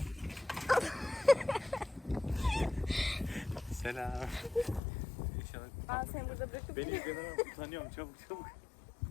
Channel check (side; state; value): right; drops out; at 4.8 s